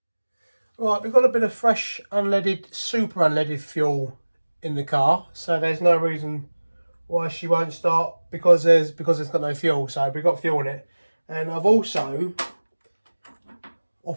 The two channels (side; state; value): both; inverted; correlation -1.00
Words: Right, we've got a bit of fresh unleaded, super unleaded fuel in the car, so there's no reason why she won't start because it's got no fuel. So we've got fuel in it. And I've also,